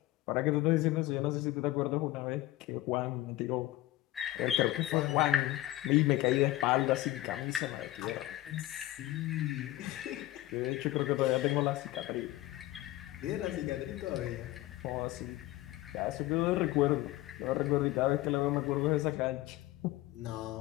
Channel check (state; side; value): quieter; right; 16.3 dB